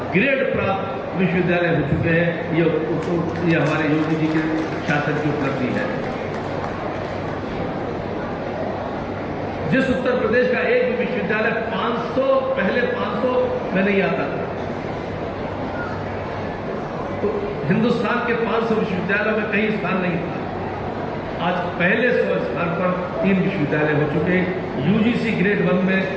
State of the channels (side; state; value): both; identical; correlation 1.00